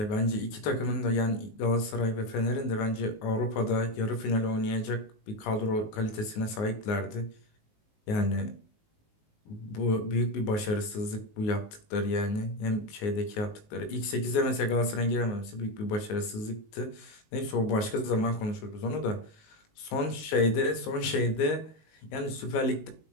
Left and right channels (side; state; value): right; late; 19 ms